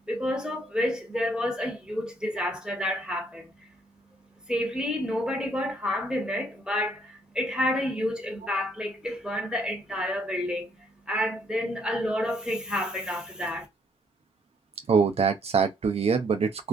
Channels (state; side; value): normal; both; correlation 0.68